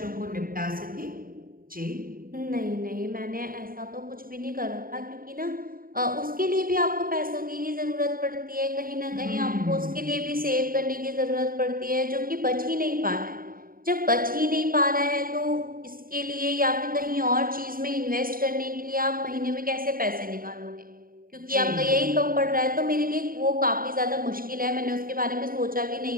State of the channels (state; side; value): late; left; 0.41 ms